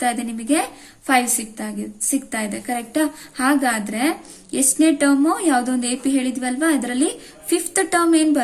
ಇದೆ ನಿಮಗೆ 5 ಸಿಗ್ತಾ ಇದೆ ಕರೆಕ್ಟಾ. ಹಾಗಾದ್ರೆ ಎಷ್ಟನೇ ಟರ್ಮ್ ಯಾವುದೋ ಒಂದು AP ಹೇಳಿದ್ವಲ್ವಾ, ಅದರಲ್ಲಿ 5th ಟರ್ಮ್ ಏನ್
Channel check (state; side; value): identical; both; correlation 1.00